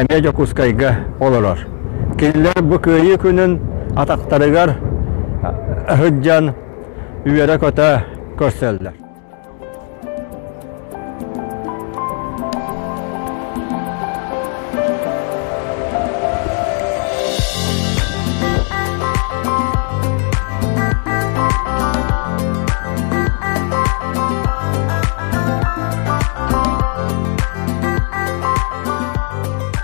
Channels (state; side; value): quieter; right; 38.8 dB